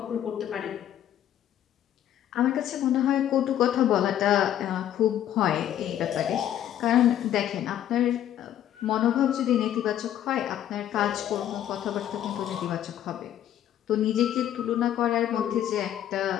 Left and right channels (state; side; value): quieter; right; 11.2 dB